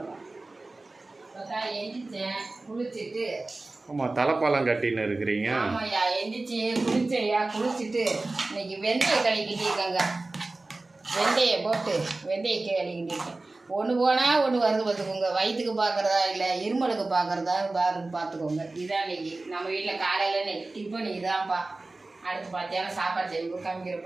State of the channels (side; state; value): left; quieter; 3.2 dB